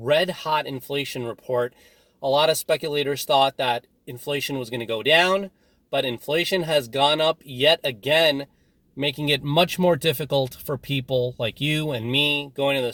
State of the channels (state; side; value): identical; both; correlation 1.00